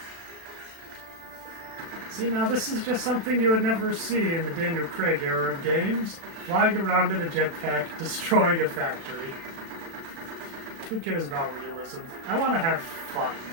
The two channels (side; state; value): left; late; 36 ms